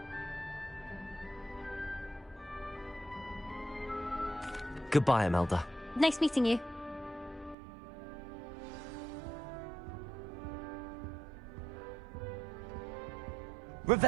Goodbye, Imelda. Nice meeting you.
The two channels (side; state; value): left; drops out; at 7.6 s